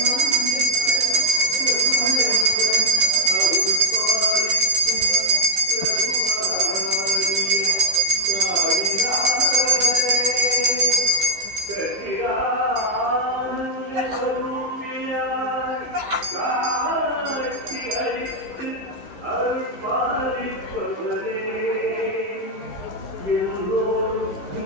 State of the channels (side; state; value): left; late; 15 ms